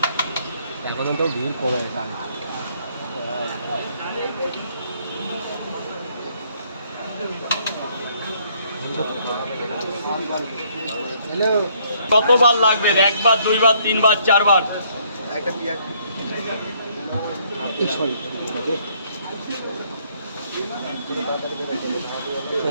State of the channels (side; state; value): both; inverted; correlation -0.67